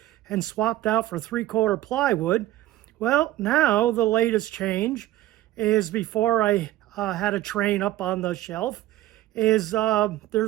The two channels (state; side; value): quieter; left; 15.4 dB